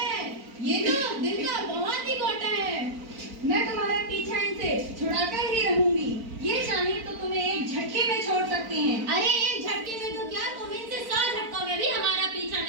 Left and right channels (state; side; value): late; left; 4.4 ms